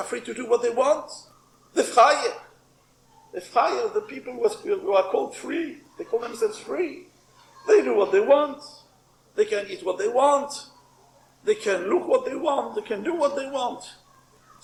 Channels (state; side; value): identical; both; correlation 1.00